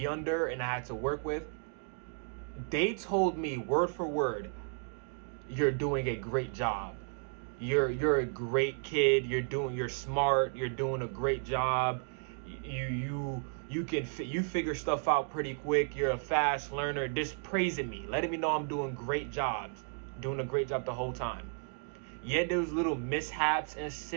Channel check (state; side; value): silent; left; 55 dB below the other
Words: under and I had to work with, they told me word for word, you're doing a great job. You're a great kid. You're smart. You're doing a great job. You figure stuff out pretty quick. You're a fast learner. Just praising me, letting me know I'm doing great jobs, doing a great job the whole time. Yeah, there was little mishaps and